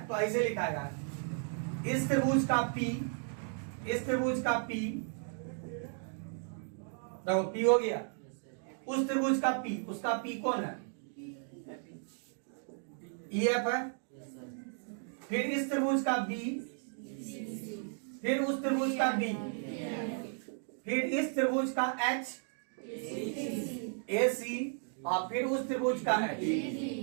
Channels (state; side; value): silent; left; 55 dB below the other